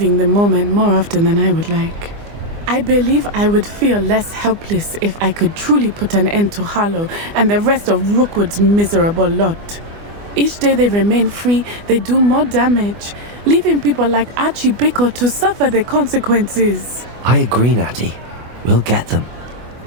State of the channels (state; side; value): late; left; 24 ms